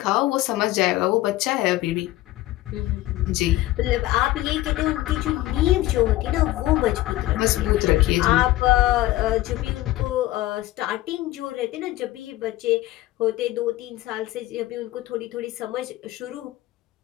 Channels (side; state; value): right; quieter; 16.4 dB